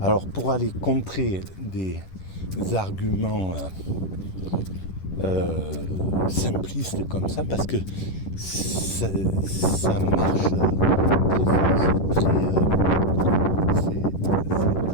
pour aller contrer des arguments simplistes comme ça, parce que ça marche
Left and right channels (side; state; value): right; late; 10 ms